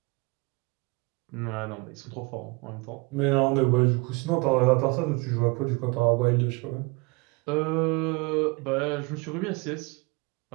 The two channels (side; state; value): left; quieter; 27.4 dB